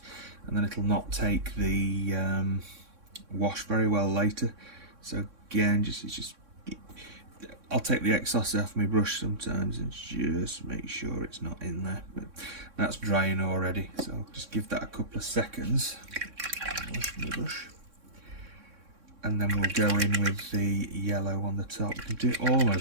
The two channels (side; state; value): left; late; 3.6 ms